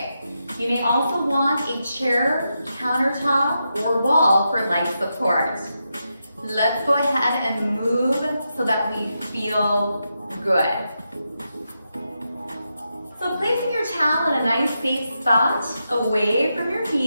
You may also want a chair, countertop, or wall for light support. Let's go ahead and move so that we feel good. So placing your towel in a nice safe spot away from your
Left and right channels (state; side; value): inverted; both; correlation -0.86